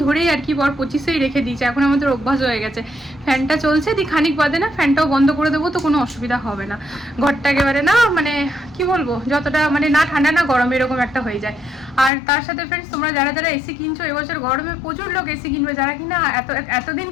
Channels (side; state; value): right; drops out; at 12.1 s